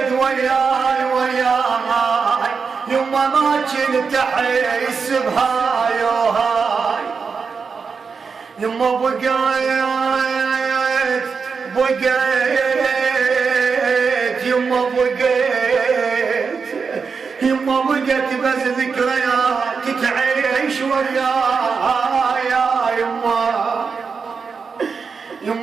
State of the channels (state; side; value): quieter; left; 5.4 dB